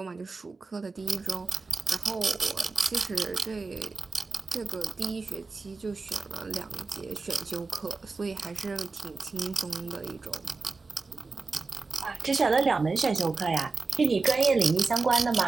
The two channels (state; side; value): quieter; left; 4.0 dB